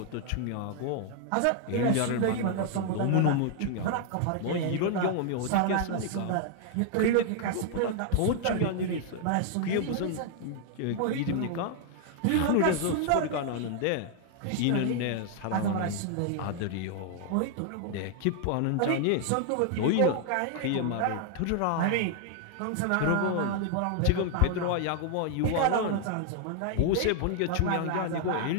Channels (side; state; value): both; different; correlation 0.00